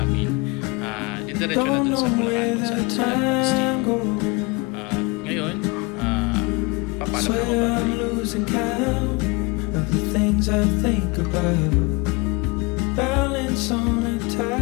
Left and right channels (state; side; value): quieter; right; 27.6 dB